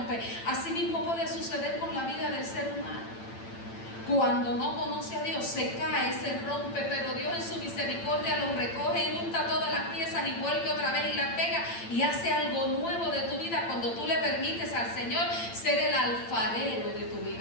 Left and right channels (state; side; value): late; right; 8.8 ms